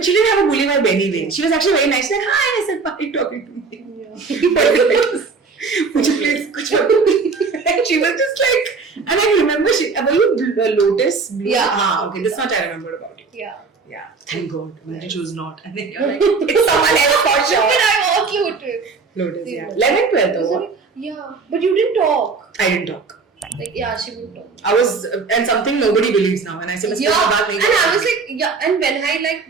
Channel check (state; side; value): quieter; left; 4.7 dB